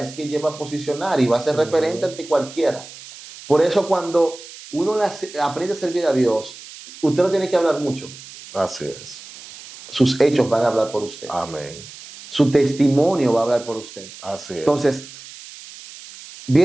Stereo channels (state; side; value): noise; right; hiss, 16 dB below the sound